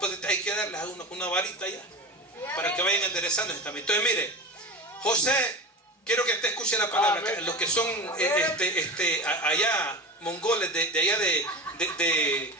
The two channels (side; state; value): both; normal; correlation 0.28